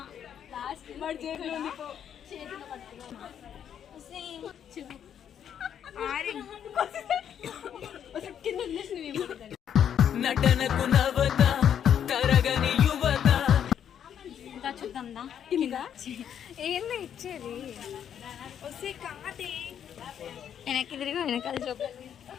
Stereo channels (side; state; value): right; quieter; 9.0 dB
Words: నటనకు నవత తరగని యువత. ఇంకా చూద్దాందా ఏందో ఇచ్చేది వస్తే కాదే వెనక్కి తిరిగి వెనకాల చూపాలి.